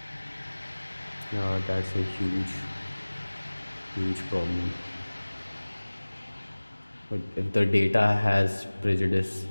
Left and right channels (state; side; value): inverted; both; correlation -1.00